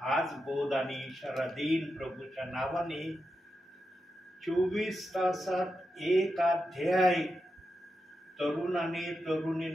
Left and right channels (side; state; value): both; normal; correlation 0.88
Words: हाच बोध आणि इशारा देईन प्रभूच्या नावाने, 24 तासात एक अध्याय तरुणाने